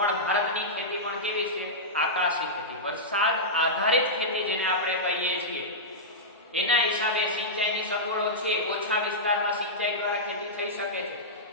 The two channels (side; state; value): both; normal; correlation -0.12